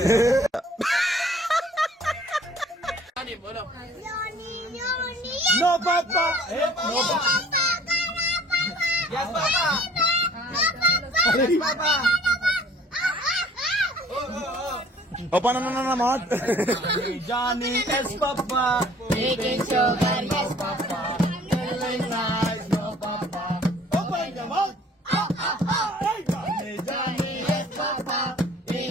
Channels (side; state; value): both; normal; correlation 0.54